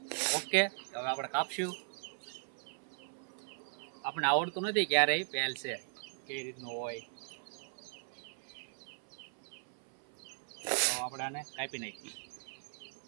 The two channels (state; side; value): silent; left; 52 dB below the other